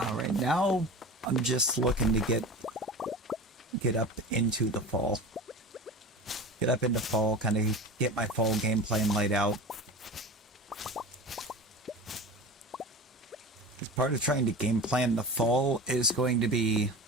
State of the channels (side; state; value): both; normal; correlation 0.34